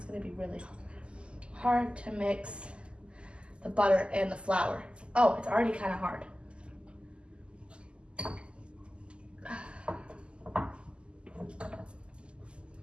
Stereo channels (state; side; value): late; left; 0.052 ms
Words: gonna be really hard to mix the butter and the flour. Oh, it's already kind of hard.